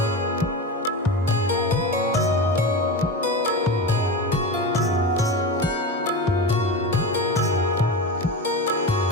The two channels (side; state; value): both; normal; correlation 0.24